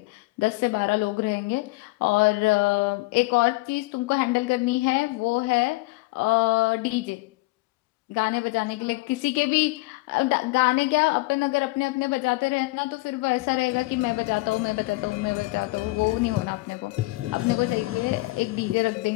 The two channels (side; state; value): right; quieter; 22.7 dB